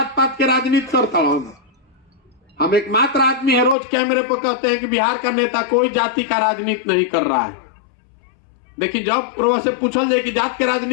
पात के राजनीति करता हूं। हम एकमात्र आदमी है रोज कैमरे पर कहते हैं कि बिहार का नेता कोई जाति का राजनीति नहीं कर रहा है। देखिए जब प्रोवा से पूछल जाए कि जात के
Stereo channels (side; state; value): right; drops out; at 3.8 s